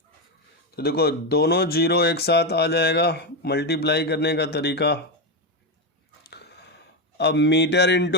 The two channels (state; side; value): normal; both; correlation 0.09